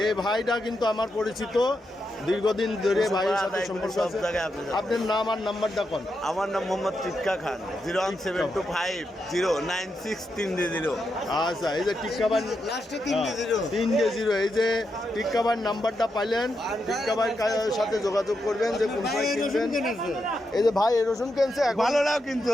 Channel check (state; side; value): normal; both; correlation 0.84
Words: এই ভাইটা কিন্তু আমার পরিচিত, দীর্ঘদিন ধরে ভাইয়ের সাথে সম্পর্ক আছে। আপনার নাম আর নাম্বারটা কোন? আমার নাম মোহাম্মদ টিক্কা খান। 01725096300। আচ্ছা, এই যে টিক্কাবান 300। এই যে টিক্কাবান নাম্বারটা পাইলেন, টিক্কাবান সাথে যোগাযোগ করবেন যে কোন সময় কিনবেন। এই যে ভাই এই রসুন কিনছে এখন। ভালোটাও কিন্তু